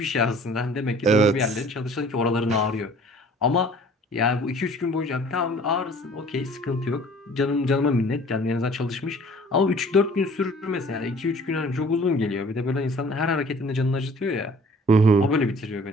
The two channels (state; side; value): normal; both; correlation 0.51